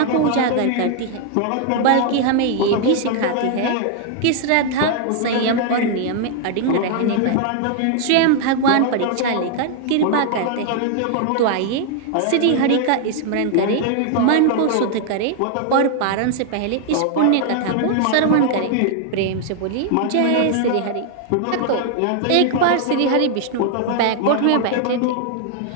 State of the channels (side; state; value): both; different; correlation 0.00